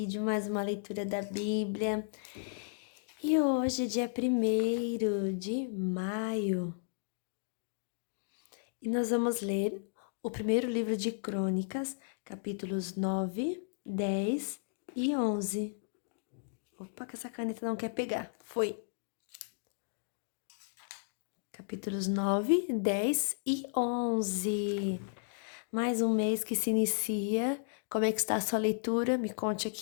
mais uma leitura da Bíblia. E hoje, dia 1º de maio, e nós vamos ler o primeiro livro de Crônicas, capítulos 9, 10 e 11. Opa, que essa caneta não quer pegar. Foi. Capítulos 9, 10 e 11. Mais um mês que se inicia. Como é que está a sua leitura? Me conte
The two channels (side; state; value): right; silent; digital silence